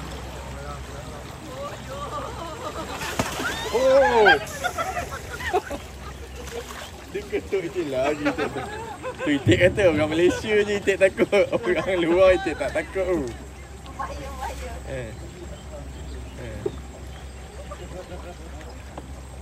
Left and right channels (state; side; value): identical; both; correlation 1.00